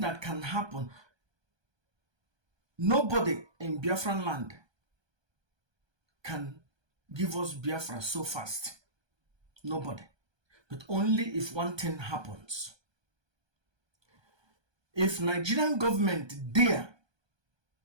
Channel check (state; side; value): late; left; 1.2 ms